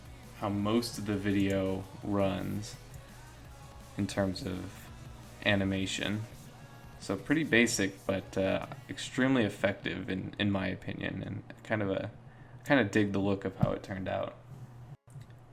most of the video runs in terms of animation. So pretty basic, but extremely effective in my opinion, and kind of dig the look of how it turned out.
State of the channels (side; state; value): both; identical; correlation 1.00